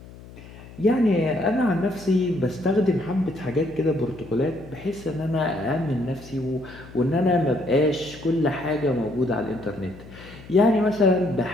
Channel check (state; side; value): noise; left; hum, 18 dB below the sound